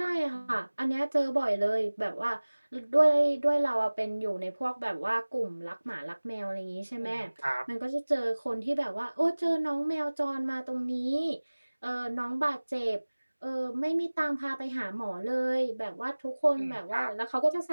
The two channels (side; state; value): both; inverted; correlation -1.00